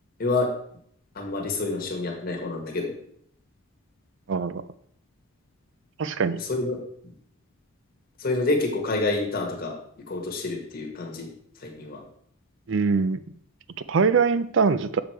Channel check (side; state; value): both; normal; correlation 0.08